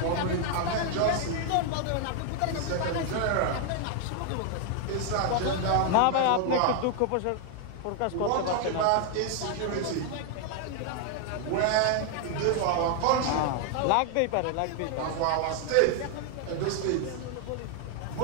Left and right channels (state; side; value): different; both; correlation 0.00